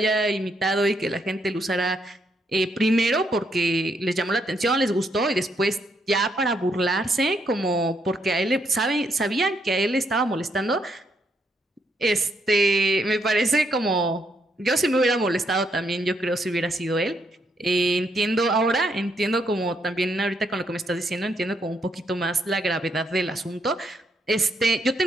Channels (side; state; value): both; normal; correlation 0.76